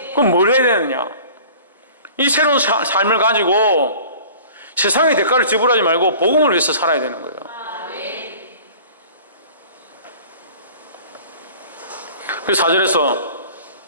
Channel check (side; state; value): both; inverted; correlation -0.45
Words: 그럼 뭘 해야 되느냐? 이 새로운 삶을 가지고 세상의 대가를 지불하지 말고 복음을 위해서 살아야 되는 거예요. 그래서 4절과